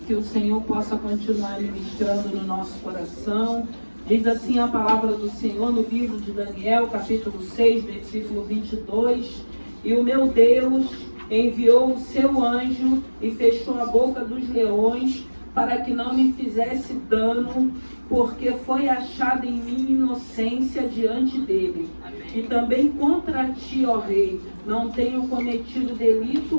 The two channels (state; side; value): inverted; both; correlation -1.00